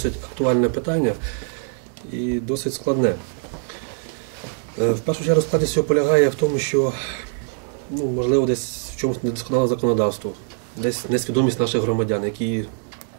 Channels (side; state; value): left; silent; 59 dB below the other